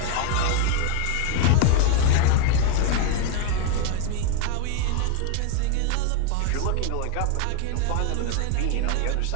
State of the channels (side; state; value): both; different; correlation 0.01